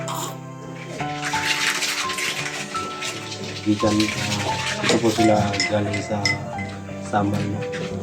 Gikan ito po sila galing sa Samal no.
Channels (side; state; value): both; identical; correlation 1.00